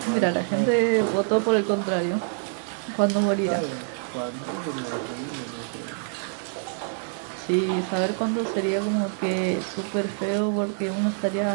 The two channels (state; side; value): silent; left; 61 dB below the other